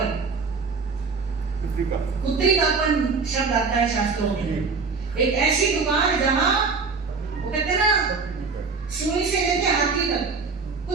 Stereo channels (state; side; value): quieter; left; 4.7 dB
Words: कापन शब्द आता है शास्त्रों में। एक ऐसी दुकान जहां वो कहते हैं ना सुई से लेके हाथी तक